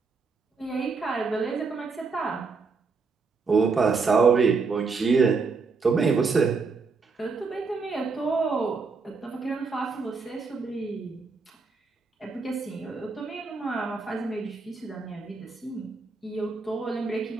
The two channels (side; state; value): left; quieter; 4.6 dB